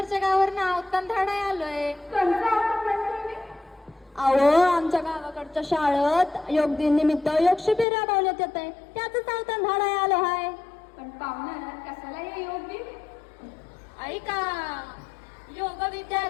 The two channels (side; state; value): right; drops out; at 7.9 s